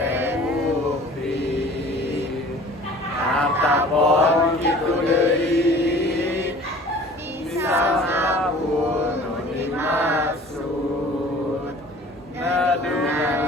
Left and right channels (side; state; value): both; normal; correlation 0.47